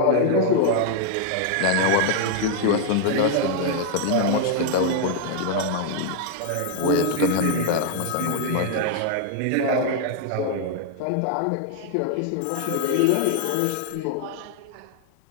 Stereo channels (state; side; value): different; both; correlation 0.00